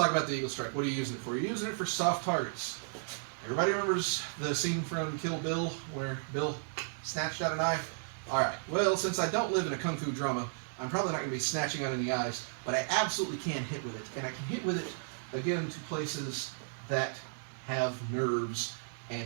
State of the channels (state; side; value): silent; left; digital silence